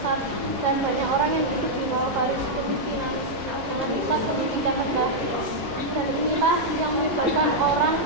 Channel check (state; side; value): normal; both; correlation -0.04